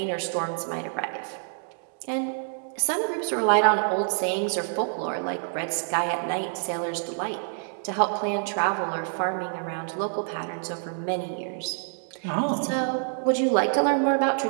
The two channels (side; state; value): left; silent; digital silence